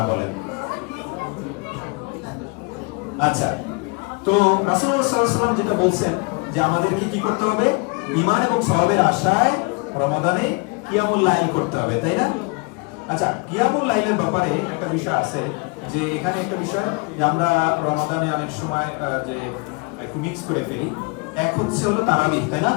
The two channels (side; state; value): right; quieter; 30.2 dB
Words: বলেন। আচ্ছা, তো রাসূলুল্লাহ সাল্লাল্লাহু আলাইহি ওয়াসাল্লাম যেটা বলছেন যে আমাদেরকে কি করতে হবে? ঈমান এবং সওয়াবের আশায় রমাদানে কিয়ামুল লাইল করতে হবে, তাই না? আচ্ছা, কিয়ামুল লাইলের ব্যাপারে একটা বিষয় আছে, যে এখানে একটা বিষয় যে আমরা রমাদানে অনেক সময় যে একটু মিক্স করে ফেলি। এক হচ্ছে হলো তারাবিহ, তাই না?